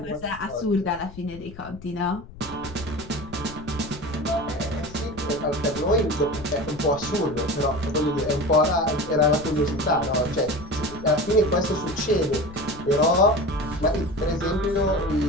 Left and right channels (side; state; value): left; noise; rumble, 17 dB below the sound